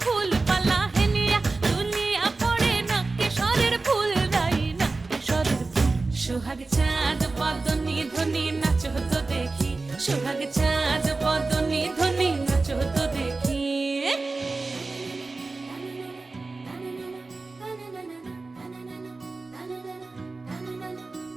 ফুল পালা। হেলিয়া দুলিয়া পড়ে, নকেশ্বরের ফুল গাই, নকেশ্বরের ফুল। সোহাগ চাঁদ বদনী ধ্বনি নাচ হতো দেখি, সোহাগ চাঁদ বদনী ধ্বনি নাচ হতো দেখি।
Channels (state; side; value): quieter; left; 3.6 dB